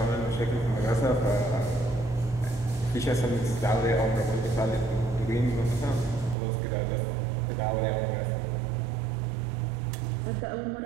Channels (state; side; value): drops out; left; at 6.4 s